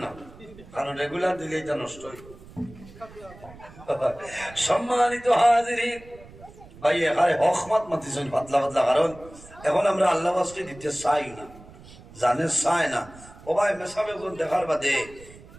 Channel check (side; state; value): right; noise; rumble, 20 dB below the sound